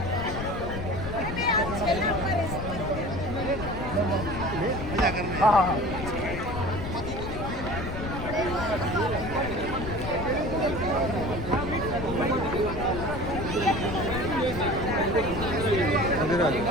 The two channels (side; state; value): left; noise; rumble, 6 dB below the sound